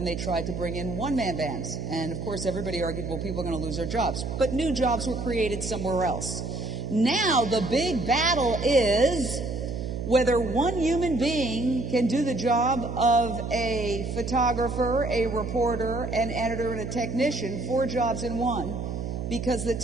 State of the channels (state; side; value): noise; right; hum, 5 dB below the sound